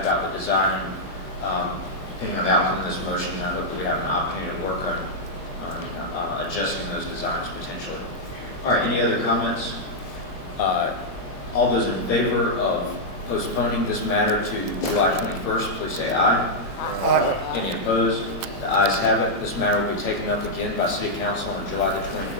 the design. Depending on the outcome of this motion, I hope that we have an opportunity to work on adjusting those designs potentially. All right, any other comments? All those in favor of postponing this matter to July 21st, please say aye. Aye. Any opposed? The ayes have it. This matter will be taken up again by City Council on July the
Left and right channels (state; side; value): late; right; 22 ms